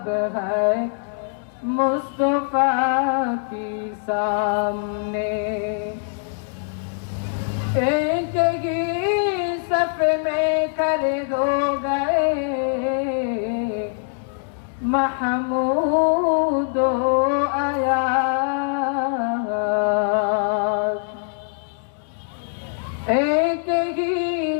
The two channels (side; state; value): right; silent; digital silence